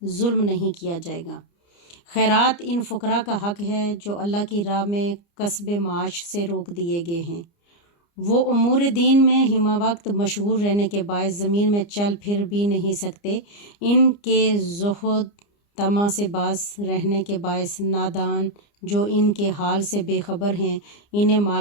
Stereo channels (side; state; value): right; late; 29 ms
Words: ظلم نہیں کیا جائے گا۔ خیرات ان فقراء کا حق ہے جو اللہ کی راہ میں کسب معاش سے روک دیے گئے ہیں، وہ امور دین میں ہمہ وقت مشغول رہنے کے باعث زمین میں چل پھر بھی نہیں سکتے، ان کے زہد طمع سے باز رہنے کے باعث نادان جو ان کے حال سے بے خبر ہیں انہیں